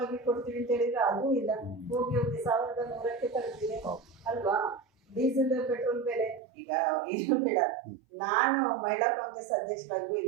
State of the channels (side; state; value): left; drops out; at 6.4 s